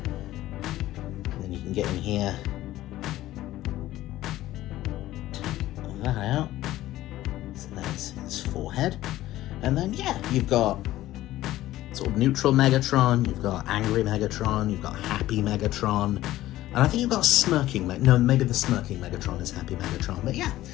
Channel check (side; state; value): right; quieter; 15.2 dB